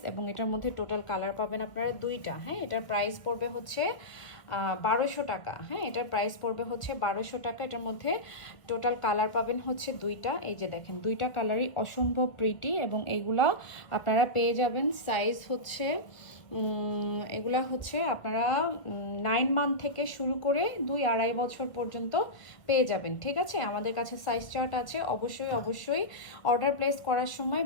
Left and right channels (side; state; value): right; late; 1.6 ms